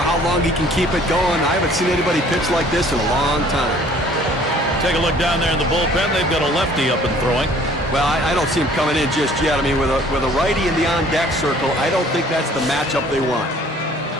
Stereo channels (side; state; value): both; normal; correlation 0.55